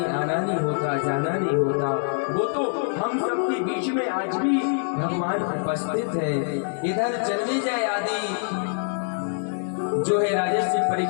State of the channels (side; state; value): right; silent; digital silence